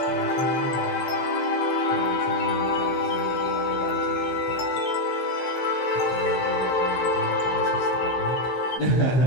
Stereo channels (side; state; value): right; late; 15 ms